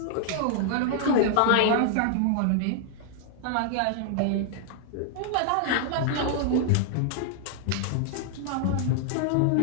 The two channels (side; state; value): both; different; correlation 0.00